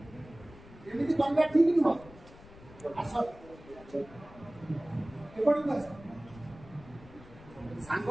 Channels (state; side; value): noise; left; rumble, 20 dB below the sound